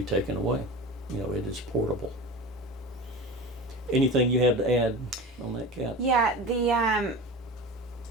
taken away. It is portable. Anything you have to add on that, Kat? Yeah,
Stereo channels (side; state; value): both; normal; correlation 0.31